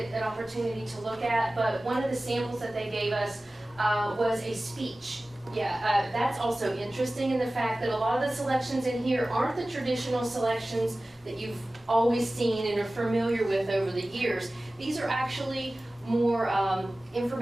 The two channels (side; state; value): both; normal; correlation 0.97